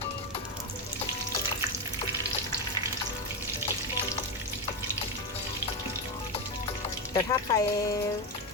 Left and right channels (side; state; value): both; normal; correlation 0.11